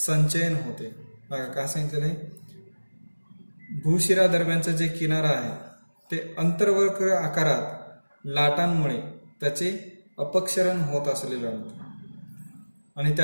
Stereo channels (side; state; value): both; inverted; correlation -1.00